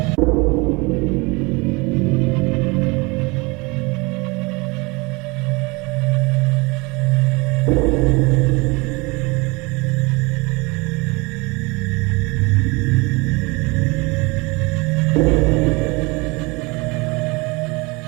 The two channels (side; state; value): left; quieter; 26.2 dB